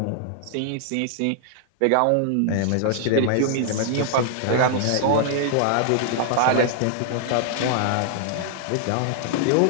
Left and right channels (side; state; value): both; different; correlation -0.01